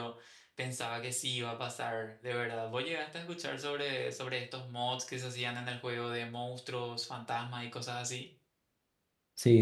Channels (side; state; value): both; identical; correlation 1.00